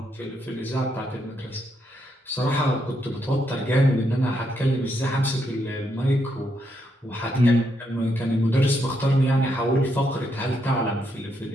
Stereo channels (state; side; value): normal; both; correlation 0.78